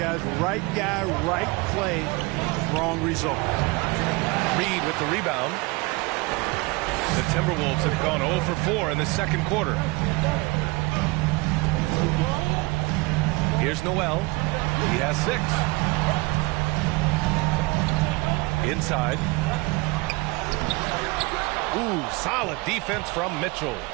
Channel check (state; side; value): quieter; left; 24.9 dB